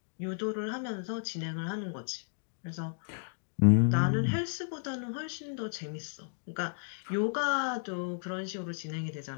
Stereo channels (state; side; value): silent; right; digital silence